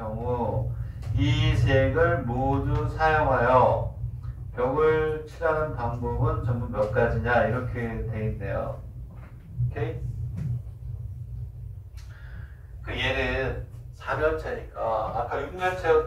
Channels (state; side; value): identical; both; correlation 1.00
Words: 이 색을 모두 사용하여 벽을 칠하는 방법은 전부 몇 가지냐 이렇게 돼 있네요. 오케이? 그 얘는 4면체니까 아까 6면체와